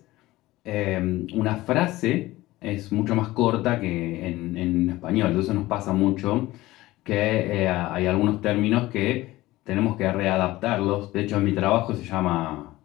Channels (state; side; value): quieter; right; 18.0 dB